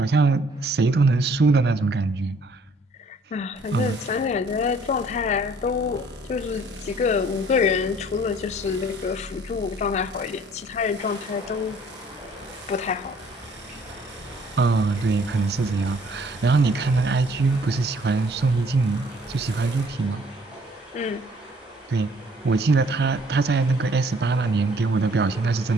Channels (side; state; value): both; normal; correlation 0.59